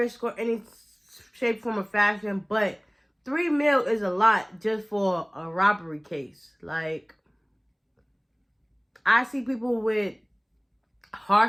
or any shape, form, or fashion, but $3 million is a lot just for a robbery case. Like, I see people with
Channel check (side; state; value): both; identical; correlation 1.00